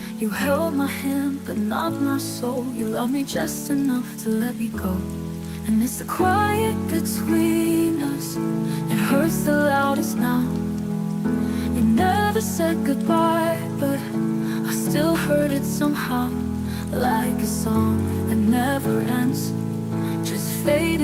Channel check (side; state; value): both; identical; correlation 1.00